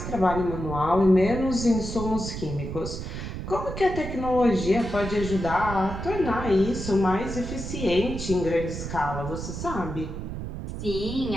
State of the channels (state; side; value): noise; right; rumble, 7 dB below the sound